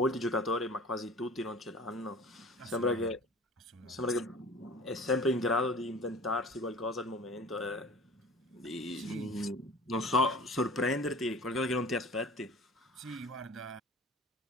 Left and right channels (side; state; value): both; normal; correlation 0.42